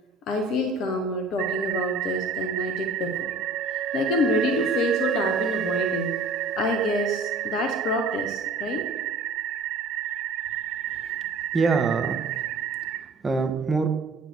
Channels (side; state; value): left; quieter; 3.1 dB